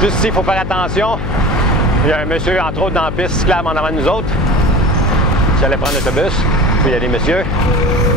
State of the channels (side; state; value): left; noise; hum, 6 dB below the sound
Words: Juste ici, il faut faire attention. Il y a un monsieur, entre autres, dans la piste cyclable en avant de nous autres. Qui allait prendre l'autobus. Puis il y a des messieurs.